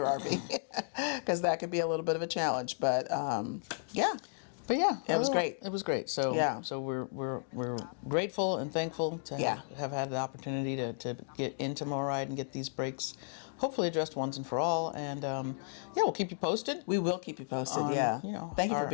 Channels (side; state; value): right; silent; digital silence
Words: RV, because that could be a little bit of a challenge. But yeah. But yeah, it was great. It was great. So so we're grateful and thankful to have had the opportunity to get into MORryde and get these brakes hopefully addressed once and for all. And we'll keep you posted. We will keep you posted. On, thank you for